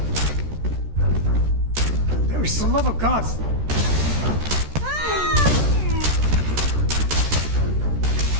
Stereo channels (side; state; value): left; late; 14 ms